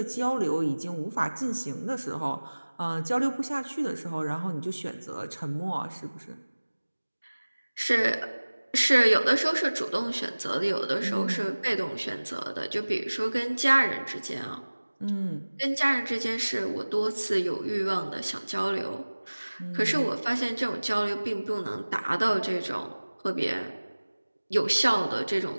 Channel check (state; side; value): inverted; both; correlation -1.00